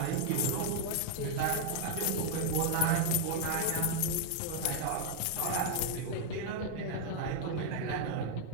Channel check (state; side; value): different; both; correlation 0.01